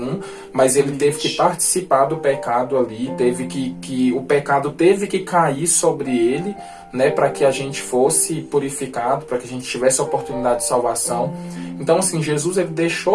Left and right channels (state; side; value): identical; both; correlation 1.00